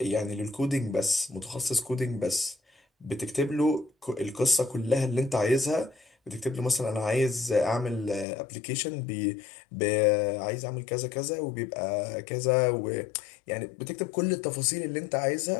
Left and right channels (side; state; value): right; drops out; at 8.2 s